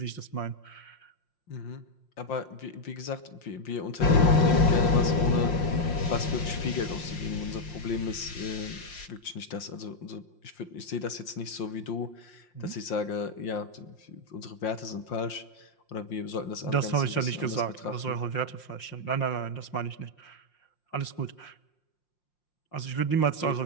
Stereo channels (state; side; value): late; right; 5.7 ms